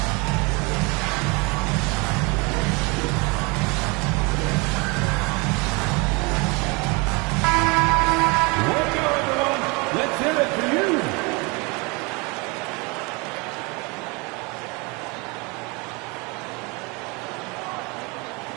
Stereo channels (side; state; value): left; quieter; 28.4 dB